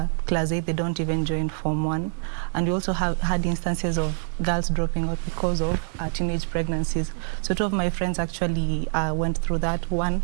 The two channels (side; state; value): left; silent; digital silence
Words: class 8, they don't even join Form 1. And we also had instances of girls dropping out because of teenage pregnancies. So two of my friends actually went through that. One